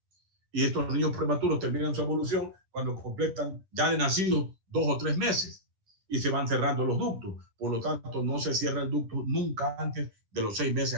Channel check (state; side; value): late; left; 10 ms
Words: Y estos niños prematuros terminan su evolución cuando completan ya de nacidos 2 o 3 meses y se van cerrando los ductos. Por lo tanto, no se cierra el ducto nunca antes de los 6